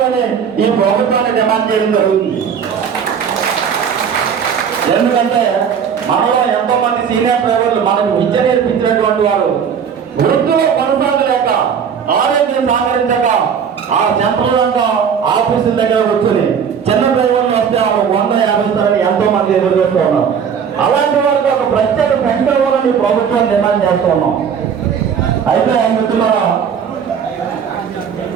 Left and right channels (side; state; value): left; quieter; 7.3 dB